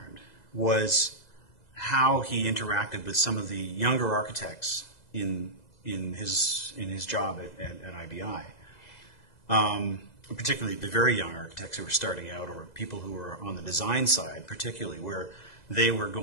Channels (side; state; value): right; late; 2.0 ms